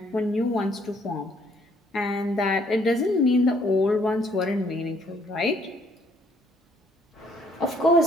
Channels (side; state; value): both; normal; correlation 0.65